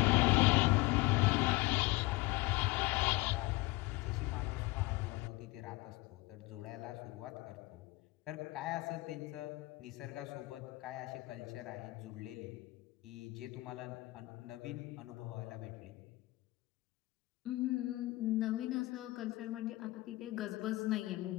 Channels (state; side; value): quieter; right; 21.2 dB